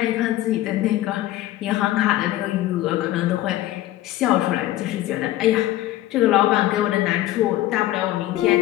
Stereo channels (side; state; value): right; quieter; 14.8 dB